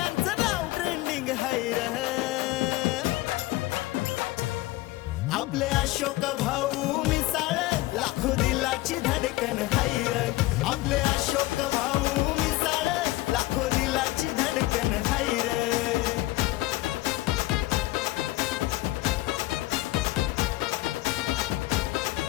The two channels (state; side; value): quieter; right; 18.5 dB